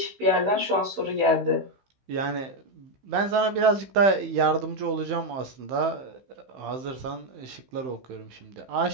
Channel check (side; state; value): left; late; 15 ms